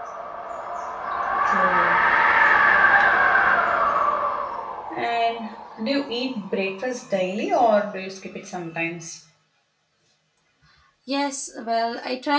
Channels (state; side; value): identical; both; correlation 1.00